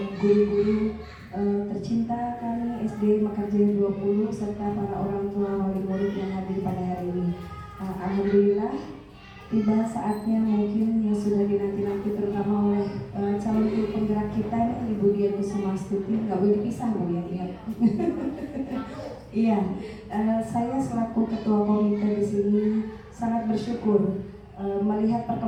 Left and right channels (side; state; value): both; identical; correlation 1.00